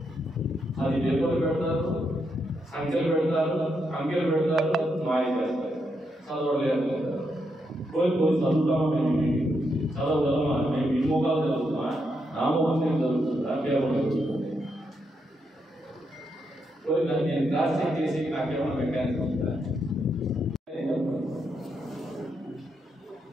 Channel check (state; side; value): normal; both; correlation 0.81